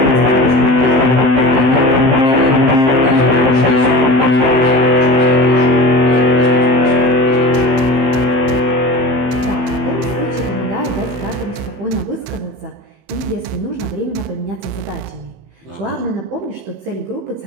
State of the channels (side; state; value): left; late; 15 ms